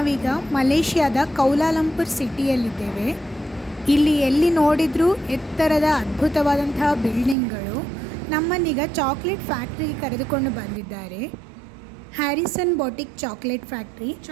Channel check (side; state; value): left; drops out; at 7.4 s